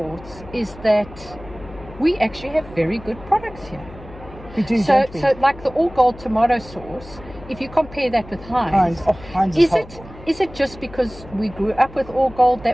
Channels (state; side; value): noise; left; hum, 18 dB below the sound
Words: is that we actually have very good products here. We do, so like the all gold tomato sauce, if you compare that with Heinz, Heinz is it just because we grew up with all gold